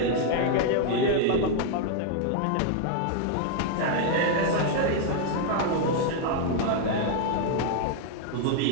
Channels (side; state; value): both; different; correlation 0.00